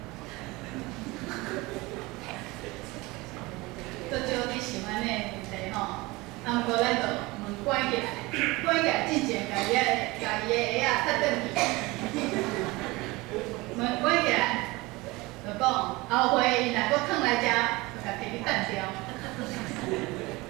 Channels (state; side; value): quieter; left; 22.4 dB